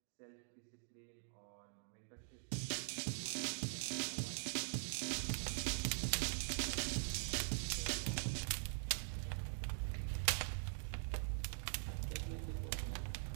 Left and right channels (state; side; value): silent; left; digital silence